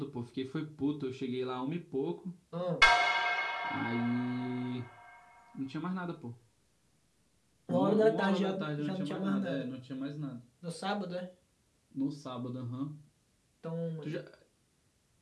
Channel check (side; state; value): both; identical; correlation 1.00